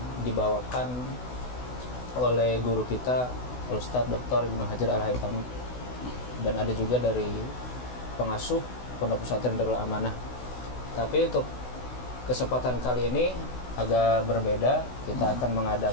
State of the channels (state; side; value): late; right; 16 ms